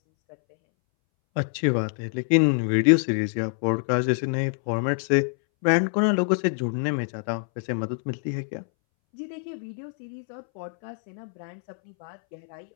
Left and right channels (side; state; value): right; silent; 61 dB below the other